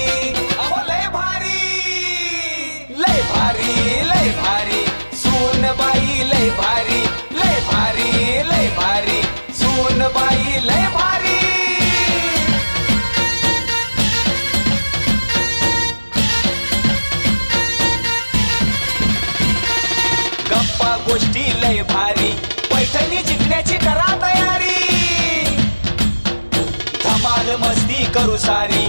अहो लय भारी लय भारी लय भारी सोन बाई लय भारी लय भारी लय भारी सोन बाई लय भारी गोष्टी लय भारी पैठणी जिंकण्याची करा तयारी धमाल मस्ती करू सारी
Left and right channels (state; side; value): inverted; both; correlation -1.00